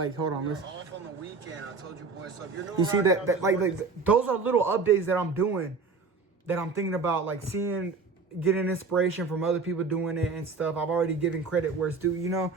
hold on, listen. Off on the weekend, I told you boys. So if you're you see that like those are little updates that I'm doing, that I'm thinking about, like getting inspiration from other people doing it and stuff. I've already given credit where it's due, you know.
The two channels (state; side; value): quieter; left; 4.4 dB